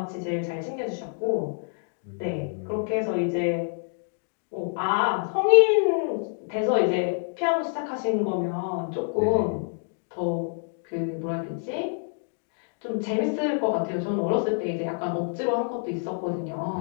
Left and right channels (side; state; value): right; silent; 60 dB below the other